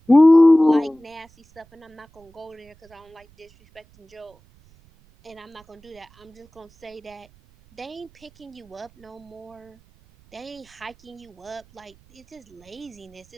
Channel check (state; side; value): noise; right; rumble, 29 dB below the sound